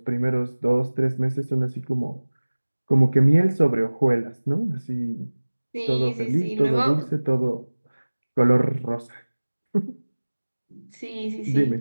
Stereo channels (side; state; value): both; inverted; correlation -1.00